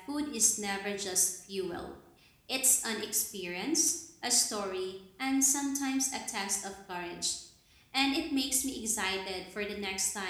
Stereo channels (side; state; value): both; identical; correlation 1.00